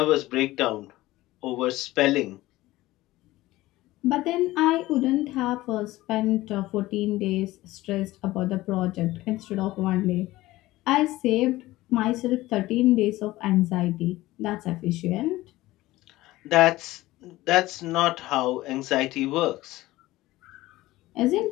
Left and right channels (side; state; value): right; quieter; 17.6 dB